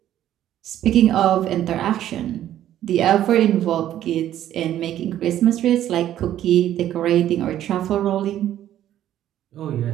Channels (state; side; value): quieter; left; 11.9 dB